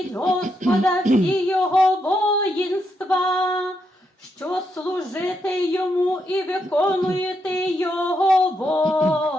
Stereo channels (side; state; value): both; normal; correlation 0.80